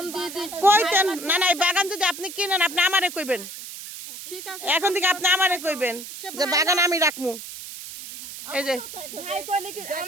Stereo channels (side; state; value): right; noise; hiss, 11 dB below the sound